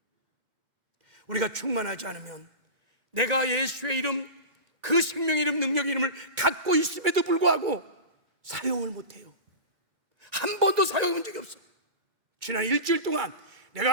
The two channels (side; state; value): left; late; 2.1 ms